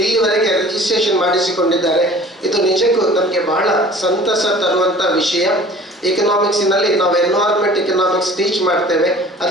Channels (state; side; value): normal; both; correlation 0.46